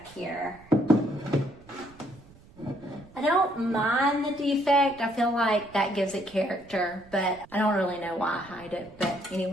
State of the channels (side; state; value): right; noise; rumble, 24 dB below the sound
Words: here. I don't mind the defect. I feel like that gives it character, but I don't really know why I hide it. But